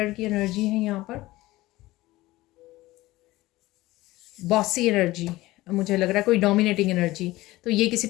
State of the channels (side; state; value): right; quieter; 18.3 dB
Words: की एनर्जी है यहाँ पर, बॉसी एनर्जी। मुझे लग रहा है कोई डोमिनेटिंग एनर्जी। तो ये किसी